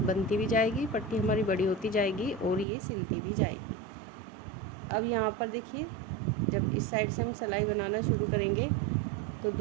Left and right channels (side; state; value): left; drops out; at 2.7 s